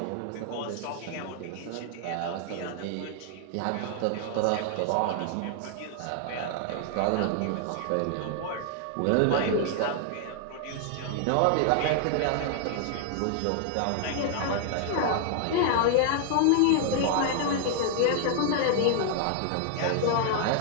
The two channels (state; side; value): different; both; correlation 0.00